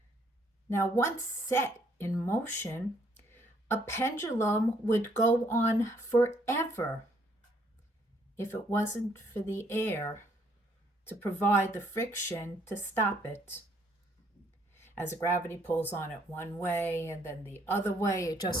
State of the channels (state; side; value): normal; both; correlation 0.67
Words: Now, once set in motion, a pendulum would go on forever if it wasn't for the air to provide the friction to stop it. As gravity pulls on it one way and then the other way, it